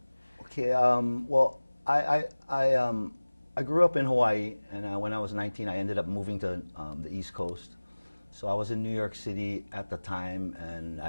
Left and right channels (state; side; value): inverted; both; correlation -1.00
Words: Okay, well, I grew up in Hawaii, and when I was 19, I ended up moving to the East Coast. So I was in New York City at the time, and